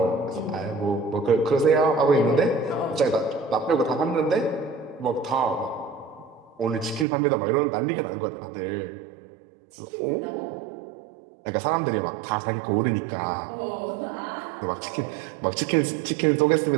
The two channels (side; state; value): left; drops out; at 7.1 s